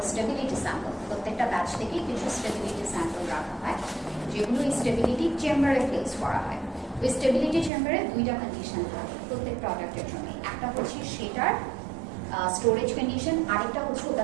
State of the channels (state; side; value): drops out; left; at 7.7 s